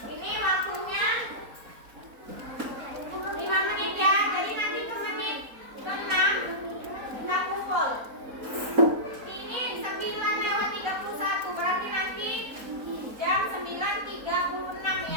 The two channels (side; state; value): left; late; 4.1 ms